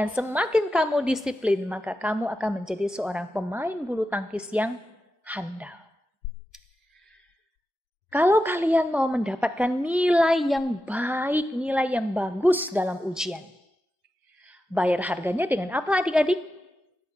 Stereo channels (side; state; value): both; normal; correlation 0.90